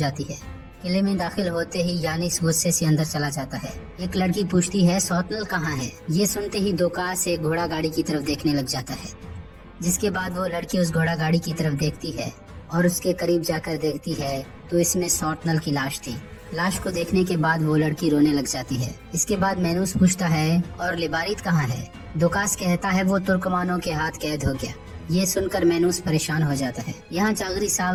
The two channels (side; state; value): both; identical; correlation 1.00